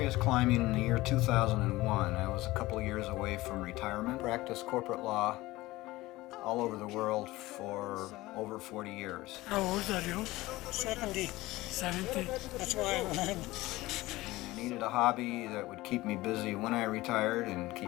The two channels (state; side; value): quieter; right; 18.8 dB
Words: climbing in the year 2001. I was a couple of years away from retirement. Practiced corporate law all over the world for over 40 years. How old are you? 70. 70. That's why I went. I needed a hobby that would keep me busy when I retired and